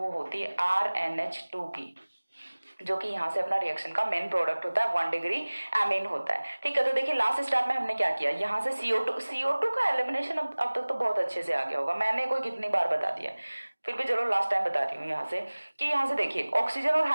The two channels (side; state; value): both; inverted; correlation -1.00